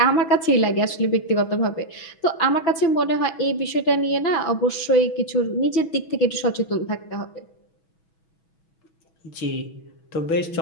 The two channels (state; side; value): late; right; 6.2 ms